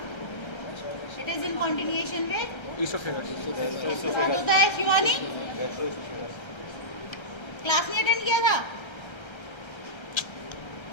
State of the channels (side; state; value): right; late; 1.3 ms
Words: It is in continuation में Esophagus. होता है. शिवानी क्लास नहीं अटेंड किया था?